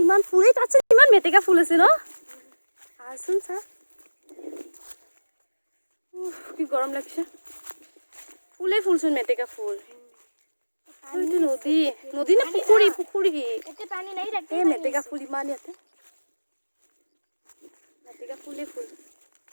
ইমান ফুল তাত ইমান মেটেকা ফুল আছে ন আছোন চা কি গৰম লাগছে ফুলে ফুলচোন মেটেকা ফুল এইটো নদী না পুখুৰী এতিয়া পানী নাই এই মেটেকা ফুল ইমান ইয়াতে মেটেকা ফুলে ফুল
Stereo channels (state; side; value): inverted; both; correlation -1.00